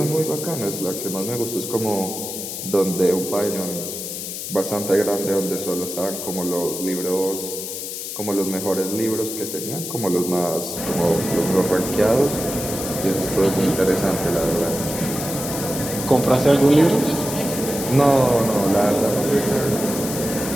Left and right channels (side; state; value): left; noise; hiss, 7 dB below the sound